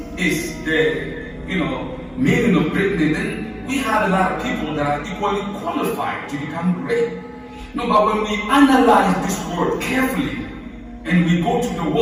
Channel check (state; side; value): identical; both; correlation 1.00